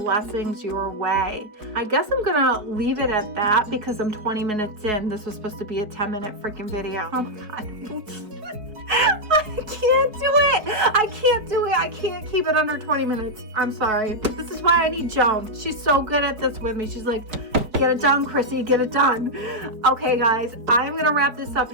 your way. I guess I'm going to leave it at that because I'm 20 minutes in. This was supposed to be a 10-minute freaking video. Oh my God. I can't do it. I can't keep it under 20 minutes. I'm sorry. This is why I need Joan. She's so good at this with me. She's like, get it done, Chrissy, get it done. Okay, guys, I'm going to wrap this up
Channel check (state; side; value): late; left; 4.4 ms